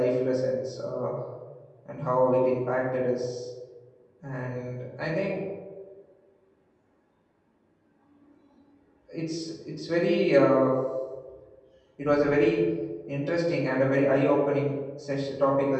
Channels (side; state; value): both; identical; correlation 1.00